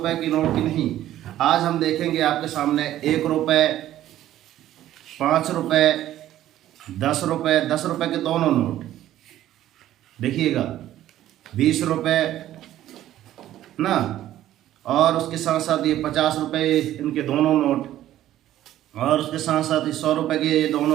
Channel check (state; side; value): quieter; left; 13.1 dB